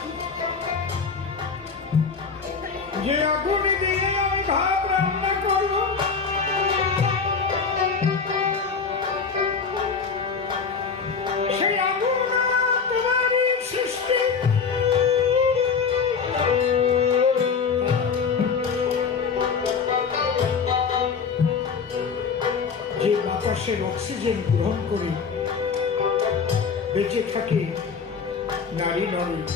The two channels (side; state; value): right; quieter; 5.6 dB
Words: যে আগুন দিয়ে আমি ভাত রান্না করবো, সেই আগুন তোমারই সৃষ্টি। যে বাতাসের অক্সিজেন গ্রহণ করে বেঁচে থাকে নারী নরে,